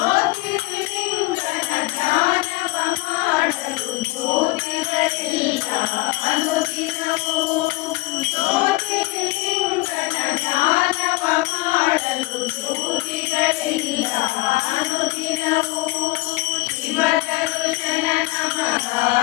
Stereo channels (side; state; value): right; quieter; 21.1 dB